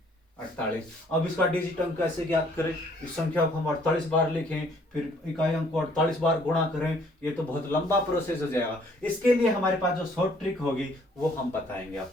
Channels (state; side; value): normal; both; correlation 0.62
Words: 48। अब इसका डिजिट अंक कैसे ज्ञात करें, इस संख्या को हम 48 बार लिखें, फिर इकाई अंक को 48 बार गुणा करें, ये तो बहुत लंबा प्रोसेस हो जाएगा। इसके लिए हमारे पास जो शॉर्ट ट्रिक होगी वो हम बताएंगे